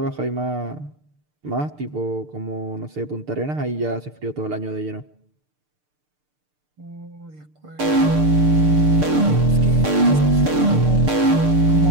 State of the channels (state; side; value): late; left; 6.7 ms